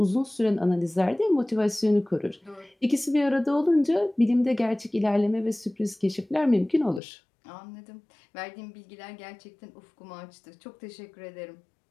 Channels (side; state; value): right; drops out; at 7.0 s